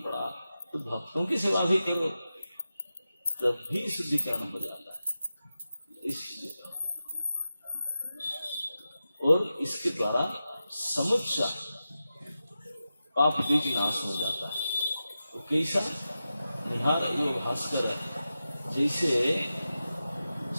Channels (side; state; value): both; inverted; correlation -0.92